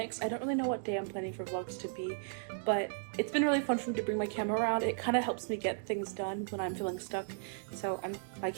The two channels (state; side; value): silent; left; digital silence